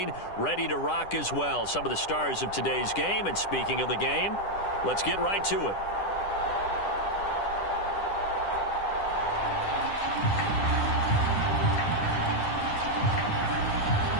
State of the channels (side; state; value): right; late; 10 ms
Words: ready to rock as well. Some of the stars of today's game, and speaking of the game, let's get right to it.